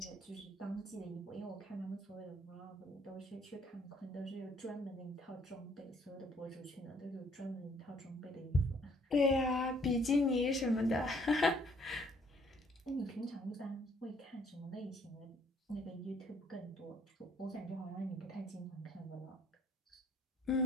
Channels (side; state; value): both; normal; correlation 0.63